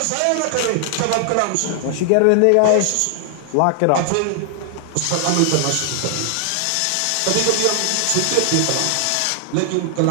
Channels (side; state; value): both; different; correlation 0.00